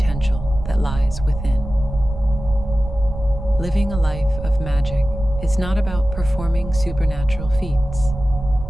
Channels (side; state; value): right; noise; rumble, 9 dB below the sound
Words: that lies within. Living a life of magic is not about performing supernatural feats.